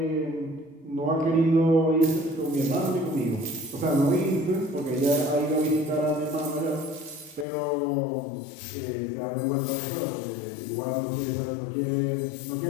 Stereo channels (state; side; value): drops out; right; at 7.5 s